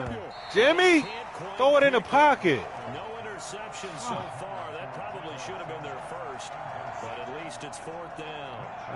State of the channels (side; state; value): both; identical; correlation 1.00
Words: Jimmy, throw it in the pocket. No interception so far. That probably should have been their first, but at least it's 4th down.